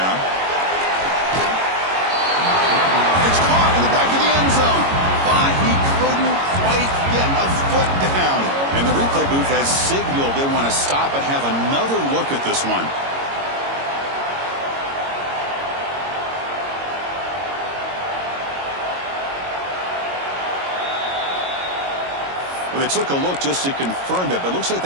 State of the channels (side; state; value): left; late; 22 ms